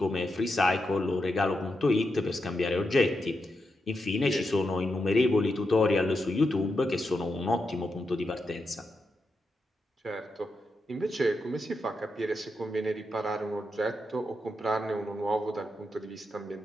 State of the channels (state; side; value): normal; both; correlation 0.86